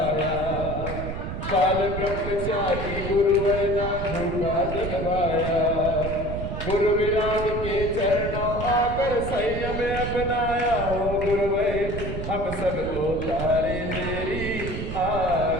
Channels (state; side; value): noise; right; rumble, 5 dB below the sound